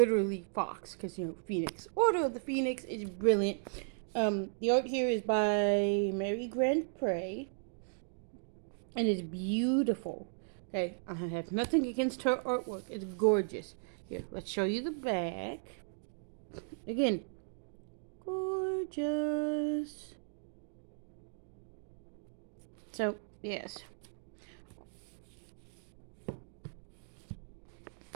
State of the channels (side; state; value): left; silent; digital silence